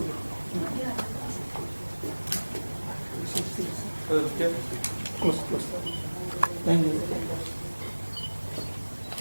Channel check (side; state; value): both; inverted; correlation -1.00